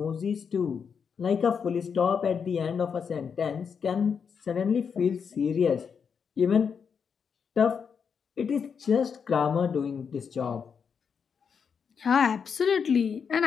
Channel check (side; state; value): right; quieter; 6.5 dB